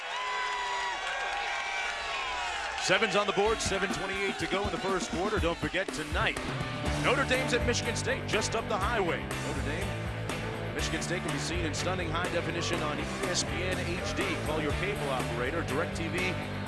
Sevens on the board, 7:28 to go in the first quarter. Don't forget tonight, Notre Dame's at Michigan State, just up the highway. Notre Dame, Michigan State can be seen in stunning high definition on ESPN HD. Call your cable operator, DirecTV,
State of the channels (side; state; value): both; identical; correlation 1.00